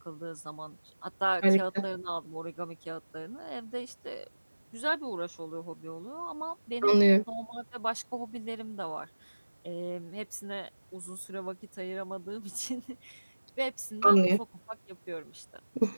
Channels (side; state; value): both; inverted; correlation -1.00